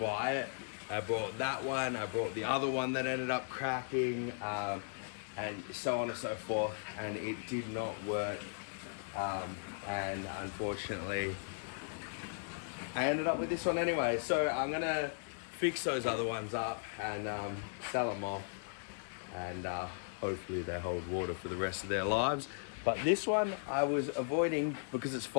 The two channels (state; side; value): silent; right; digital silence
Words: it. I bought that one, I bought the other one that ended up cracking, and so on and so forth, and it did not work. And unfortunately, I ended up with this one anyway. So I'm gonna fix those other ones up and sell them off, and hopefully they hold water for the rest of their lives. But this one I was avoiding because it's